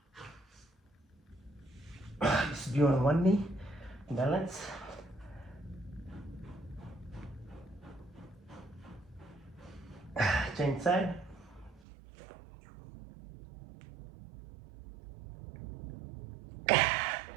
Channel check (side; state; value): left; drops out; at 11.8 s